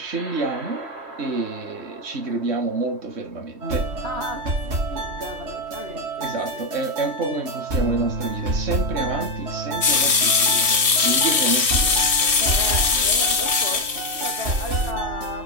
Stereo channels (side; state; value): left; late; 3.1 ms